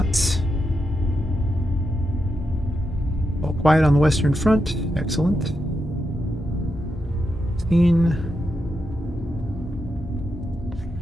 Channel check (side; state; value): both; normal; correlation 0.85